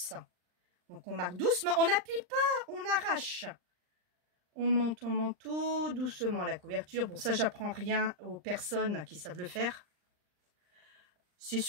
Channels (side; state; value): left; late; 39 ms